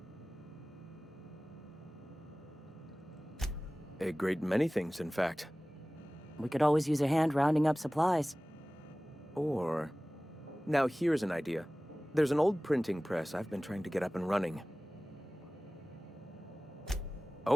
A great many things, in fact. We could always use a hand rounding up supplies. Or... Now here's an idea. There's an old printing press I've been trying to get up and running.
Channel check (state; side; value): normal; both; correlation 0.98